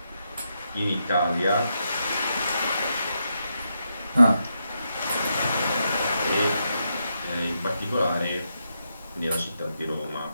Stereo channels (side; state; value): both; inverted; correlation -0.83